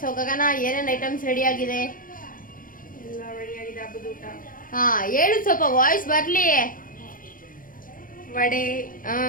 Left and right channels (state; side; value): late; right; 0.40 ms